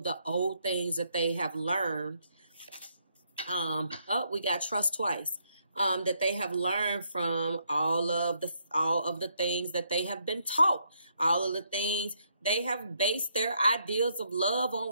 the old things that they have learned. We got trust twice. That they have learned from all of the things that they have been taught. All of the things they have based their ideas of love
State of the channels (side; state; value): both; inverted; correlation -0.74